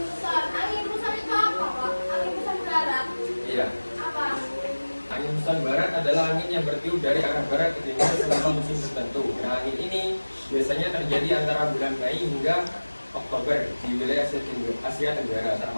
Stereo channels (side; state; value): both; inverted; correlation -1.00